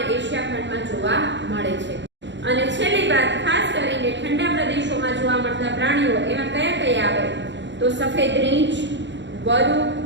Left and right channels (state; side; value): late; left; 0.53 ms